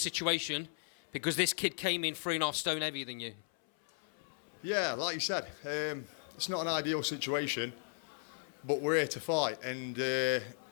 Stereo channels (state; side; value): silent; right; 54 dB below the other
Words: because this kid came in 3.5 stone heavier than you. Yeah, like you said, it's not an ideal situation, but we're here to fight. And